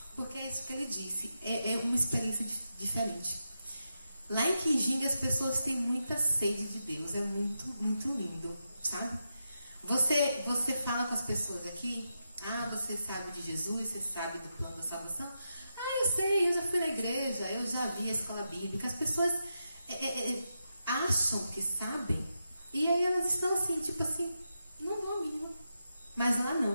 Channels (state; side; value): inverted; both; correlation -0.87